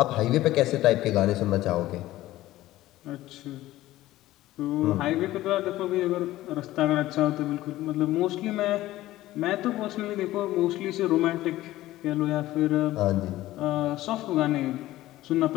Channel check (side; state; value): right; quieter; 15.8 dB